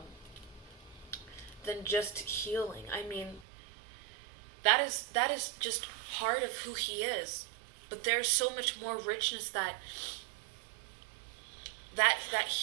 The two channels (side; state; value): left; drops out; at 3.5 s